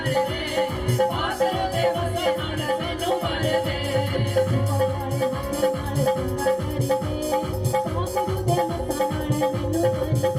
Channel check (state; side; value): identical; both; correlation 1.00